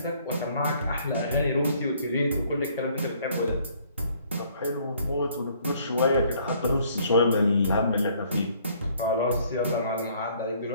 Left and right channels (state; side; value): inverted; both; correlation -0.61